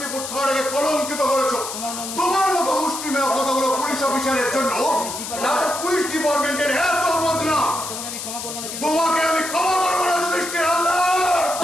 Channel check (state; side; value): noise; left; hiss, 7 dB below the sound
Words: থানাকে কলঙ্কিত করেছো। তোমার মতো মুষ্টিমেয় কথাগুলো পুলিশ অফিসারের জন্য পুলিশ ডিপার্টমেন্টের এত বদনা। তোমাকে আমি ক্ষমা করবো না যুধিষ্ঠির হালদার।